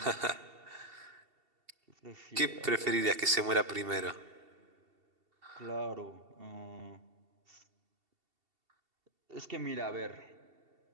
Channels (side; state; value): left; late; 2.7 ms